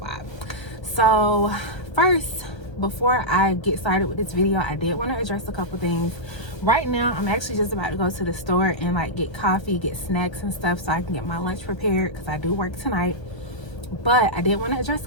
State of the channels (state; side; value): late; right; 1.3 ms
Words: So first, before I get started with this video, I did want to address a couple things. Right now I'm actually just about to go to the store and like get coffee, get snacks and stuff so I can get my lunch prepared because I do work tonight. But I did want to address